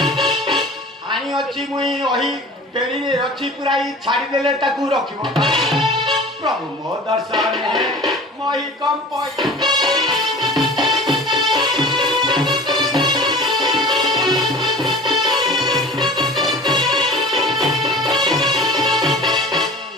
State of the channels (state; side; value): normal; both; correlation 0.41